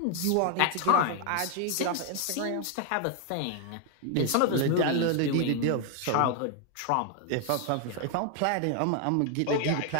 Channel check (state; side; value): different; both; correlation 0.00